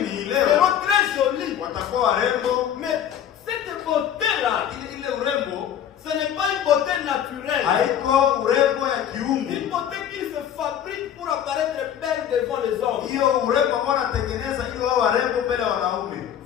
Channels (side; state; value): right; quieter; 9.7 dB